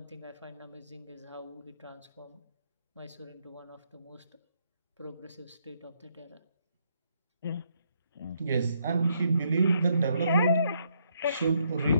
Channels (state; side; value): inverted; both; correlation -0.74